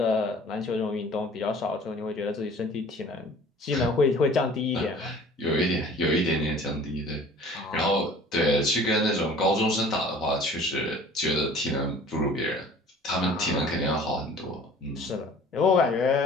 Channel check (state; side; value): normal; both; correlation 0.48